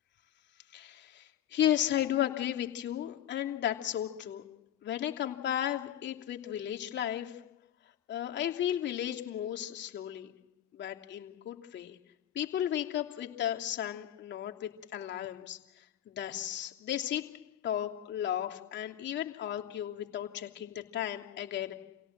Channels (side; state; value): right; quieter; 10.9 dB